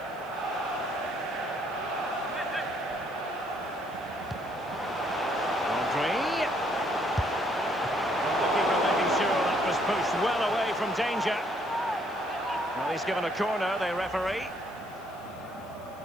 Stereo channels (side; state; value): left; noise; hiss, 26 dB below the sound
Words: Rodri. And the keeper making sure that was pushed well away from danger. Well, he's given a corner, the referee.